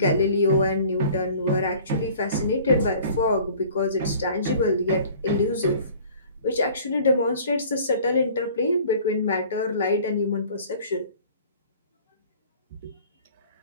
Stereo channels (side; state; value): both; inverted; correlation -0.49